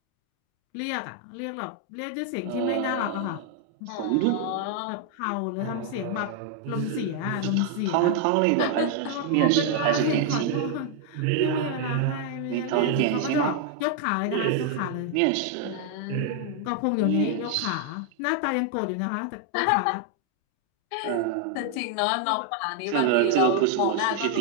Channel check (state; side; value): different; both; correlation 0.00